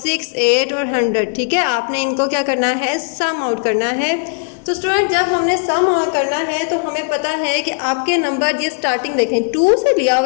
8 और 100। ठीक है, आपने इनको क्या करना है, सम आउट करना है। तो स्टूडेंट जब हमने सम करना है तो हमें पता है कि आपके नंबर, ये स्टार्टिंग देखें 2 से लिया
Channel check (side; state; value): right; silent; digital silence